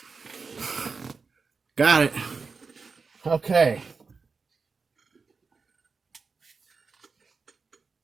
Got it. Okay.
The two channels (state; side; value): quieter; left; 4.7 dB